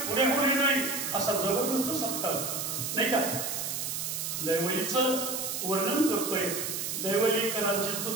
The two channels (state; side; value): noise; right; hiss, 3 dB below the sound